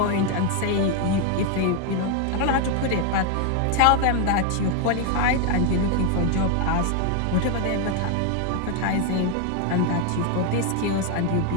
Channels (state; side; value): different; both; correlation 0.01